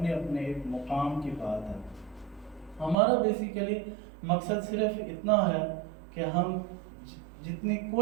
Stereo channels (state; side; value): drops out; left; at 3.0 s